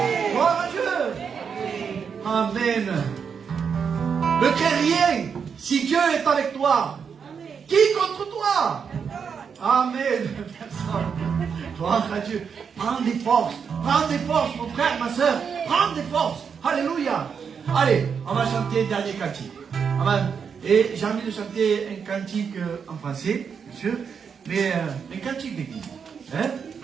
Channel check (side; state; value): left; quieter; 6.5 dB